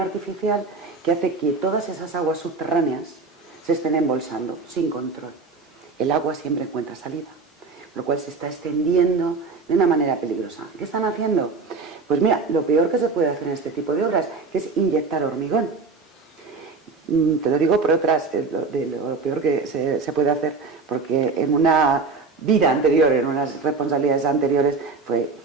artificial que hace que todas esas aguas subterráneas se estén embolsando sin control. El agua siempre encuentra salida, lo cual se está extendiendo de una manera peligrosa. ¿Qué están haciendo? Pues mira, lo peor que se puede hacer en este tipo de obras, que es inyectar hormigón. Te lo digo por otras, de lo peor que se puede hacer, porque en una vida anterior, en unas responsabilidades anteriores,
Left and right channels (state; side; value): quieter; left; 4.3 dB